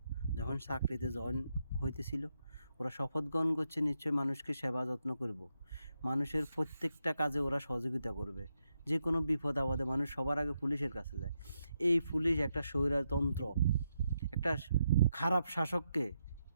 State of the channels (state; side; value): inverted; both; correlation -0.82